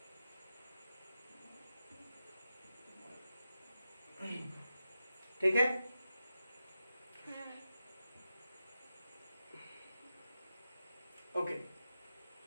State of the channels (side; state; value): both; inverted; correlation -0.90